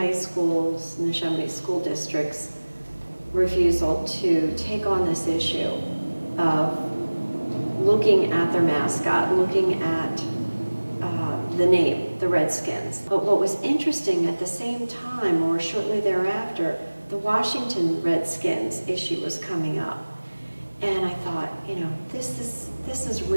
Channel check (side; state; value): both; inverted; correlation -1.00